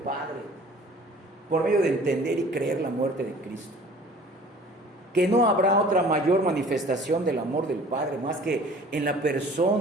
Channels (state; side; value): normal; both; correlation 0.48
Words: por medio de entender y creer la muerte de Cristo, que no habrá otra mayor manifestación del amor del Padre más que en la